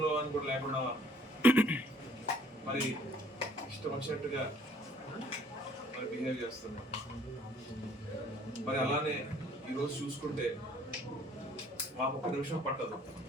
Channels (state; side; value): normal; both; correlation 0.59